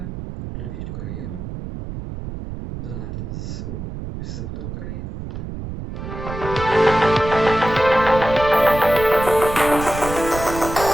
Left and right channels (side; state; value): right; noise; rumble, 8 dB below the sound